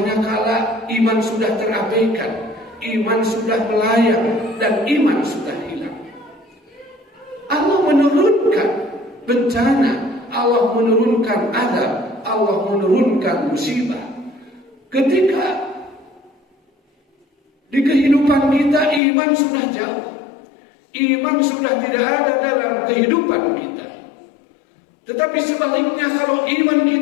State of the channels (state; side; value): drops out; right; at 19.0 s